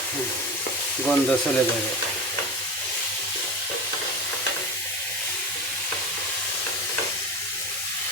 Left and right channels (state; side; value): normal; both; correlation 0.27